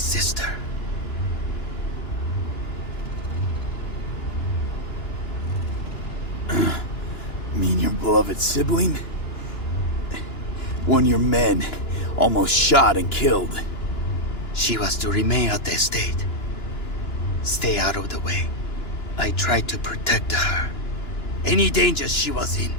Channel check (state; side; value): late; right; 2.9 ms